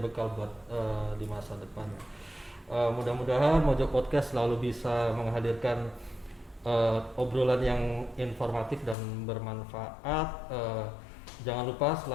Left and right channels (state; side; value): drops out; right; at 9.0 s